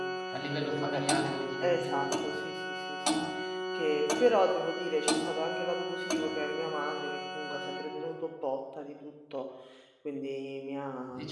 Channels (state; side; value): identical; both; correlation 1.00